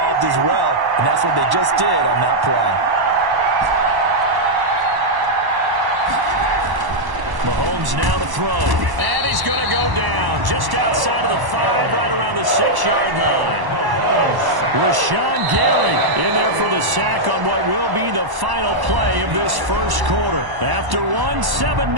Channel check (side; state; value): left; late; 1.1 ms